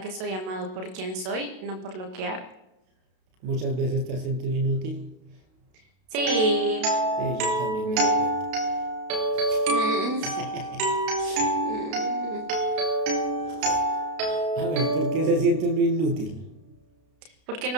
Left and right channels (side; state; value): left; late; 32 ms